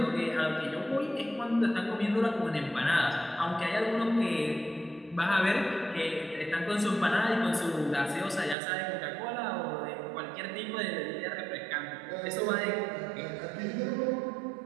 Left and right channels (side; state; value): left; drops out; at 8.6 s